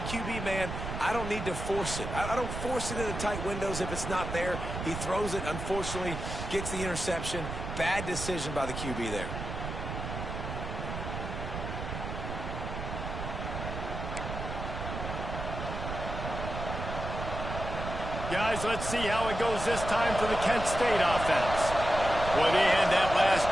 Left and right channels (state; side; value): noise; right; rumble, 6 dB below the sound